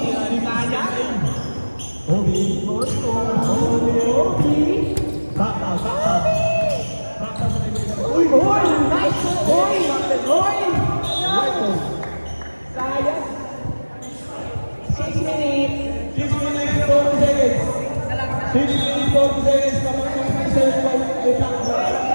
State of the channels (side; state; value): both; inverted; correlation -1.00